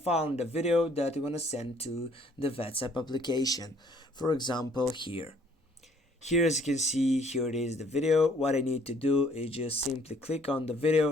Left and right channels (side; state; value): both; normal; correlation 0.61